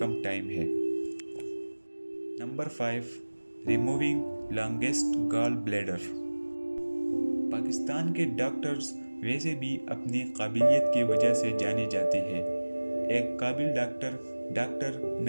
ٹائم ہے۔ نمبر 5، ریموونگ لانگسٹ گال بلیڈر۔ پاکستان کے ڈاکٹرز ویسے بھی اپنی قابلیت کی وجہ سے جانے جاتے ہیں۔ ایک قابل ڈاکٹر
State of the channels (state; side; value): inverted; both; correlation -1.00